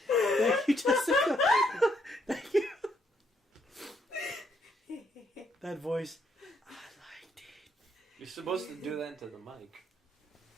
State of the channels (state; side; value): normal; both; correlation 0.72